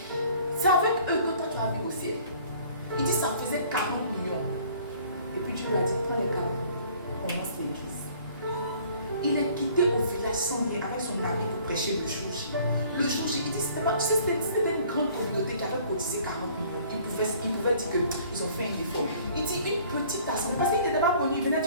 C'est avec eux que toi tu as vu au ciel. Il dit, ça faisait 40 millions. Et puis Dieu lui a dit, prends les 40, commence l'église. Il est quitté au village sans rien avec son ami pour prêcher le jour J. Le jour J, il dit, c'était une grande communauté qui avait cotisé 40 millions. Il pouvait dire qu'ils ont fait un effort. Il dit, une petite assemblée, parce qu'il n'était pas connu, il venait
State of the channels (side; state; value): both; inverted; correlation -0.54